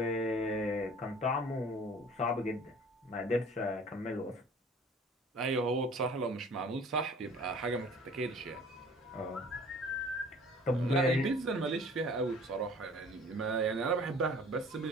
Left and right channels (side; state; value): both; normal; correlation 0.49